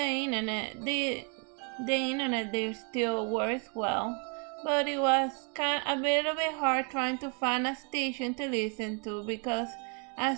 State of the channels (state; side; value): quieter; left; 37.0 dB